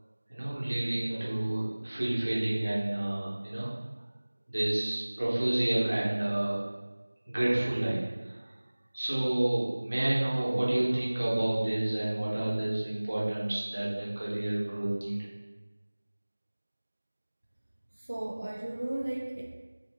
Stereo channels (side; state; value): both; inverted; correlation -1.00